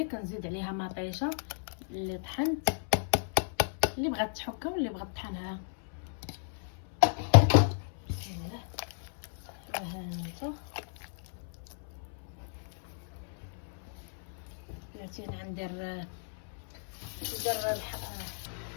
كنزيد عليها مطيشه اللي طحنت، اللي بغات تحكها واللي بغات تطحنها. بسم الله. ها انت بلاتي ندير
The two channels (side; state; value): right; silent; 55 dB below the other